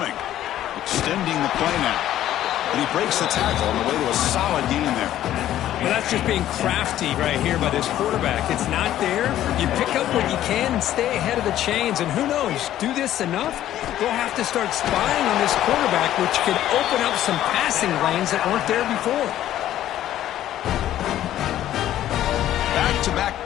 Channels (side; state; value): right; quieter; 12.6 dB